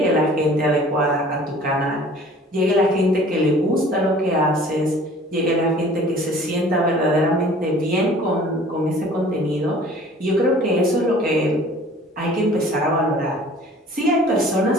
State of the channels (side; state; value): both; normal; correlation 0.49